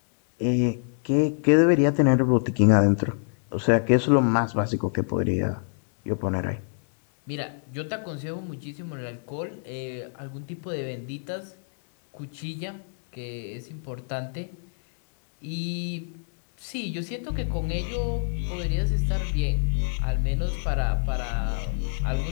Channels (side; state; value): right; silent; digital silence